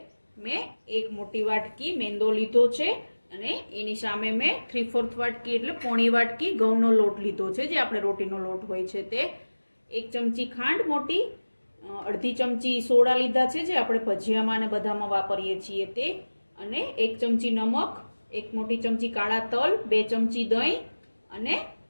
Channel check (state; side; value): inverted; both; correlation -1.00